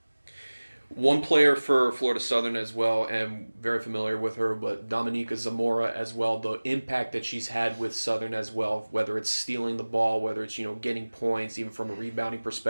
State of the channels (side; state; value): both; inverted; correlation -1.00